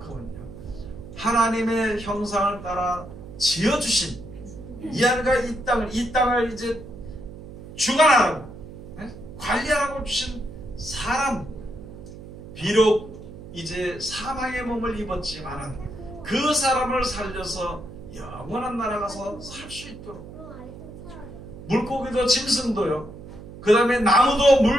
하나님의 형상을 따라 지어주신 이 하늘과 이 땅을 이제 주관하라고 관리하라고 주신 사람, 비록 이제 사망의 몸을 입었지만 그 사람을 살려서 영원한 나라 가서 살 수 있도록, 물고기도 짐승도요, 그 다음에 나무도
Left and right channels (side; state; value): right; noise; hum, 14 dB below the sound